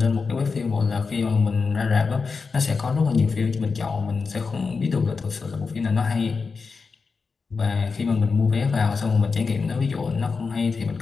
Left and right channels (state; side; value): quieter; right; 4.8 dB